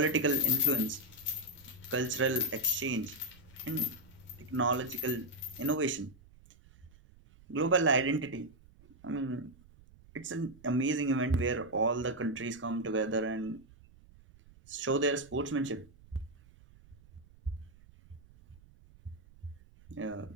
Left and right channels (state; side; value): noise; right; rumble, 25 dB below the sound